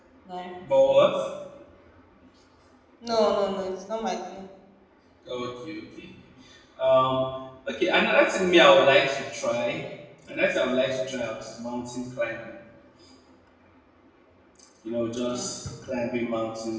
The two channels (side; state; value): both; identical; correlation 1.00